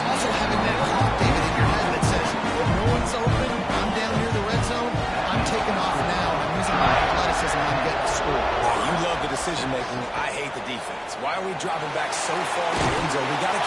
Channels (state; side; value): identical; both; correlation 1.00